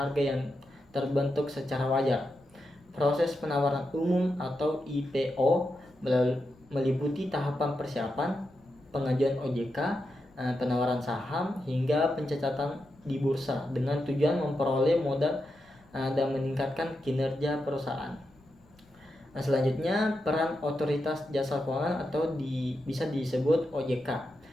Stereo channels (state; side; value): noise; left; rumble, 29 dB below the sound